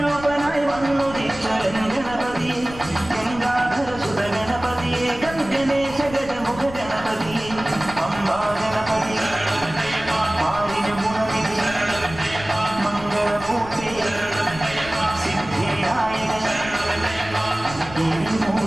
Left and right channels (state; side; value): noise; left; rumble, 14 dB below the sound